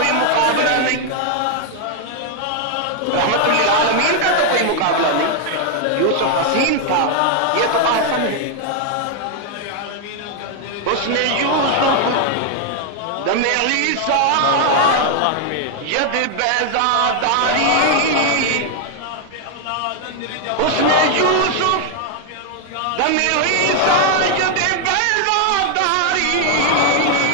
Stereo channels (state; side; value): different; both; correlation 0.00